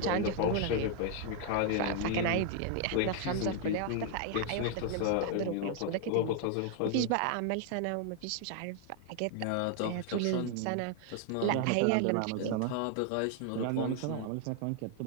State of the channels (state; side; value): different; both; correlation 0.00